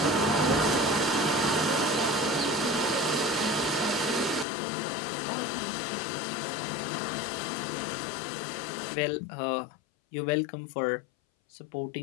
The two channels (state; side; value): drops out; right; at 4.5 s